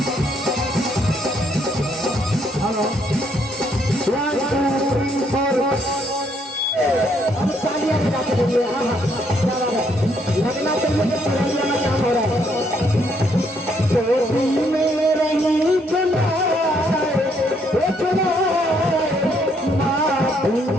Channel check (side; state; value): both; normal; correlation 0.71